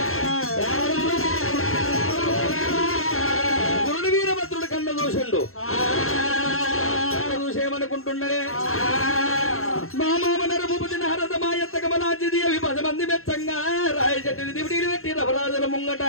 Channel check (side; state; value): right; late; 0.62 ms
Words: గురుడు వీరభద్రుడు కన్న చూసిండు చూసేమనుకుంటున్నాడే మా మామ నరభూపతి నారద మాయత్త కమలాంజిది అవి 10 మంది మెచ్చంగా రాయ చెట్టుని దివిడీలు పెట్టి రవరాజుల ముంగట